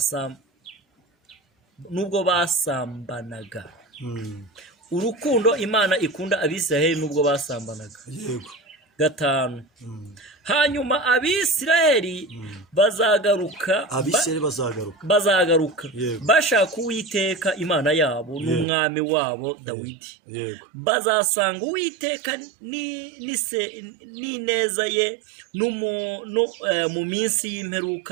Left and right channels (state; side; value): drops out; left; at 18.7 s